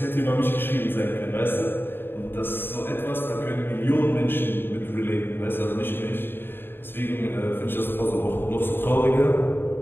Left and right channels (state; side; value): late; right; 0.10 ms